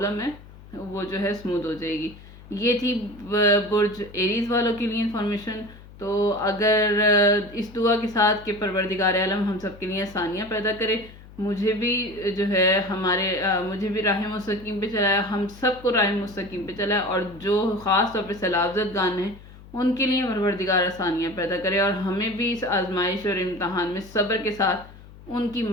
ہے وہ جو ہے اسموتھ ہو جائے گی. یہ تھی برج ایریز والوں کے لیے انفارمیشن. تو اگر اس دعا کے ساتھ کہ پروردگار عالم ہم سب کے لیے آسانیاں پیدا کرے، مجھے بھی جو ہے مجھے بھی راہ مستقیم پہ چلائے، ہم سب کو راہ مستقیم پہ چلائے، اور جو خاص طور پہ سیلابزد گان ہیں ان کے لیے پروردگار آسانیاں پیدا کرے، اور ہمیں بھی اس آزمائش اور امتحان میں صبر کے ساتھ ان کی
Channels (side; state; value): left; noise; hum, 20 dB below the sound